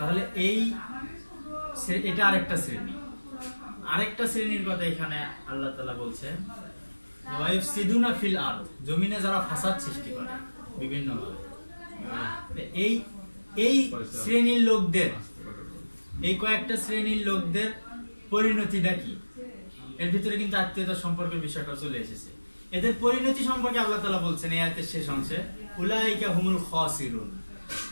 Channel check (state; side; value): inverted; both; correlation -1.00